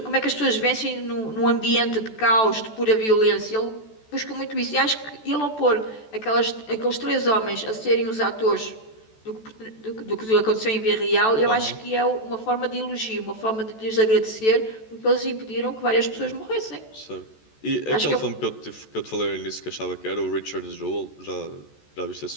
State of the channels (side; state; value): right; late; 14 ms